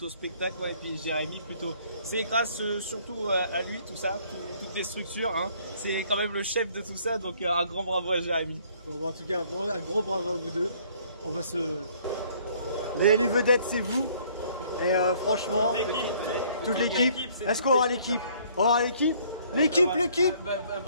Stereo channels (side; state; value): both; inverted; correlation -0.60